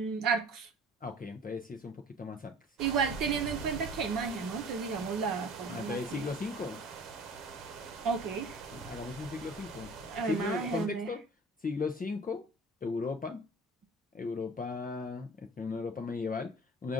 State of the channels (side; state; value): both; normal; correlation 0.45